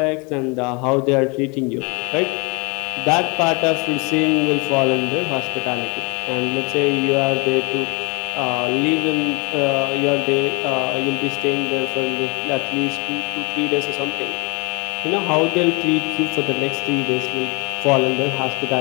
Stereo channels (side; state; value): right; quieter; 30.3 dB